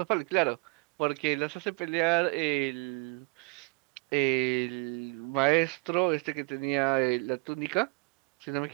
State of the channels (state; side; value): quieter; left; 30.4 dB